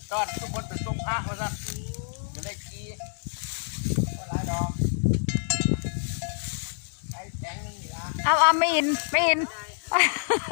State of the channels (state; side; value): silent; right; digital silence